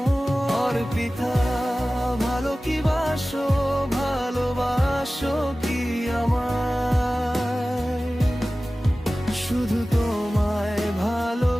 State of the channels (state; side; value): normal; both; correlation 0.97